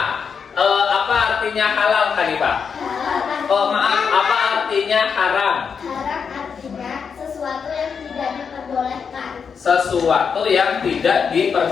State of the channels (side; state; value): right; quieter; 6.3 dB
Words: Apa artinya halal, Hanifah? Oh maaf, apa artinya haram? Haram artinya sesuatu yang tidak diperbolehkan. Sesuatu yang tidak